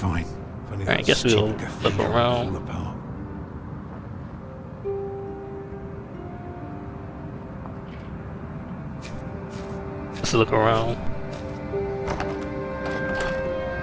Alright, I guess we'll look around. Let's look around.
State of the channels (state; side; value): identical; both; correlation 1.00